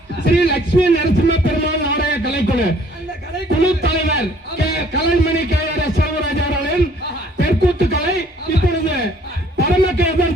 ஸ்ரீ லட்சுமி நரசிம்ம பெருமாள் நாடக கலைக்குழு குழு தலைவர் கலைமணி கேஆர் செல்வராஜ் அவர்களின் தெற்கூத்து கலை இப்பொழுது பரமகேதன்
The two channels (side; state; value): both; normal; correlation 0.59